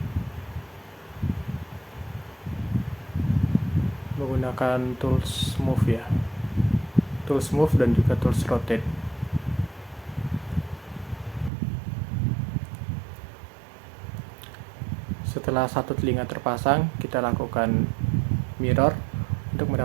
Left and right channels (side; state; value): left; drops out; at 11.5 s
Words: menggunakan tools move ya, tools move dan juga tools rotate. Setelah satu telinga terpasang, kita lakukan mirror untuk